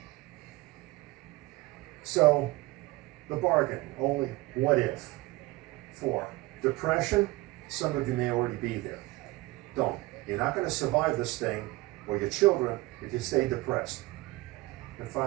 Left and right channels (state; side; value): quieter; left; 20.5 dB